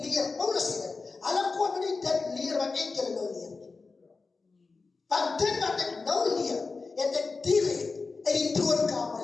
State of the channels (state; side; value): quieter; right; 4.2 dB